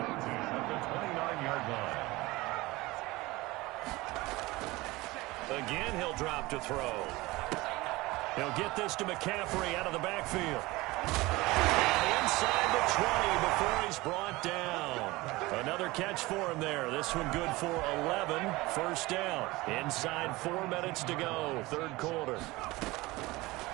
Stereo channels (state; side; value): quieter; left; 20.8 dB